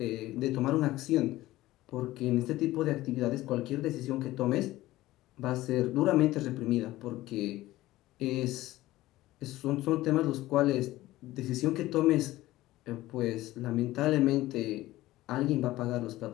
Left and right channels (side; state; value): right; quieter; 16.8 dB